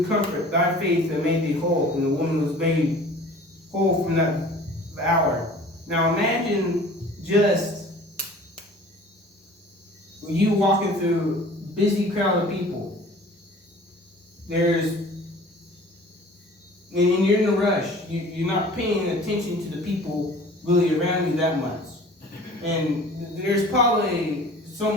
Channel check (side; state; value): both; normal; correlation 0.46